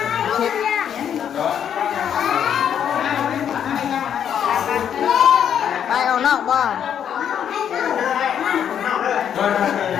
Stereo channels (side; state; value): right; quieter; 8.9 dB